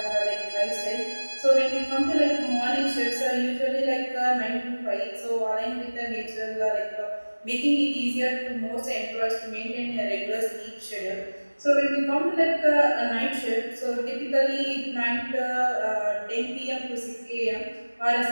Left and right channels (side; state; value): both; inverted; correlation -1.00